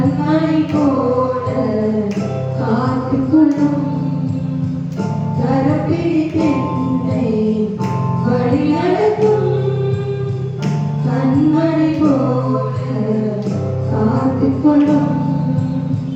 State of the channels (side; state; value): both; identical; correlation 1.00